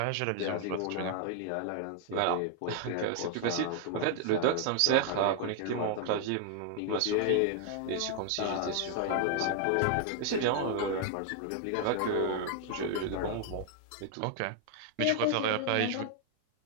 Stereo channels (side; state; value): both; different; correlation 0.00